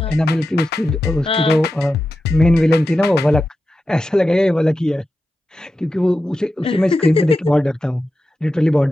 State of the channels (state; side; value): normal; both; correlation 0.91